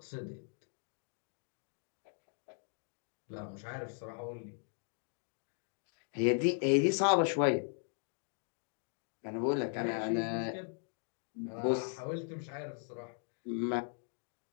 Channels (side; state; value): right; silent; 52 dB below the other